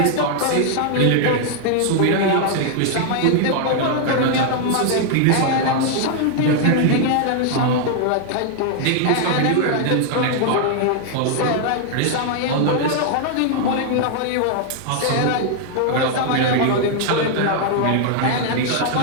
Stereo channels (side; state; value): both; different; correlation 0.00